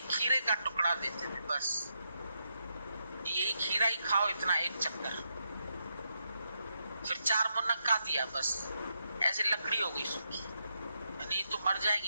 खीरे का टुकड़ा देते थे, बस ये खीरा ही खाओ, इतना एक चक्कर। फिर 4 मुनक्का दिया, बस ऐसे लकड़ी हो गई सूखी, नहीं तो मर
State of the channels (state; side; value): inverted; both; correlation -0.82